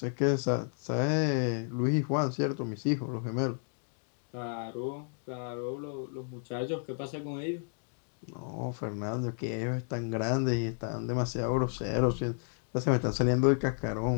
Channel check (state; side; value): silent; right; 56 dB below the other